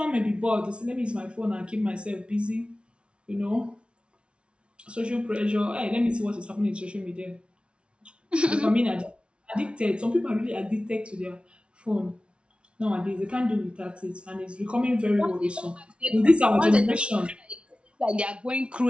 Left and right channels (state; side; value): late; left; 0.059 ms